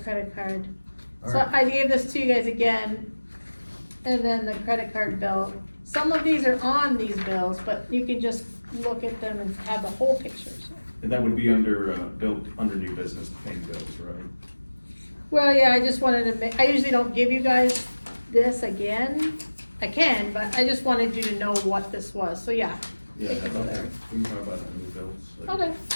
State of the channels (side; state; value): both; inverted; correlation -1.00